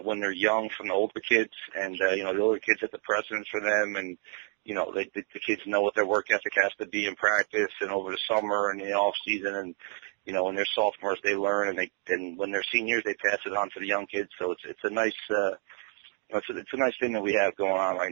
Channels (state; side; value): silent; left; 59 dB below the other